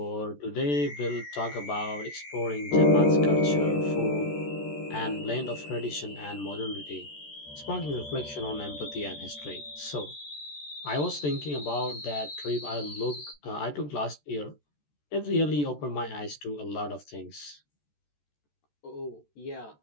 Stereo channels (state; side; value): late; right; 14 ms